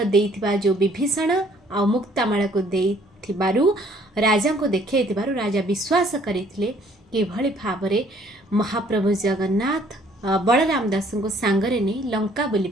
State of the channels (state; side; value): normal; both; correlation 0.60